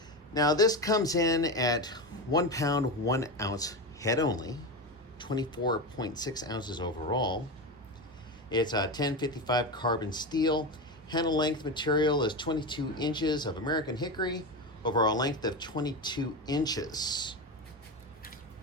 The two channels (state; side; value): normal; both; correlation 0.19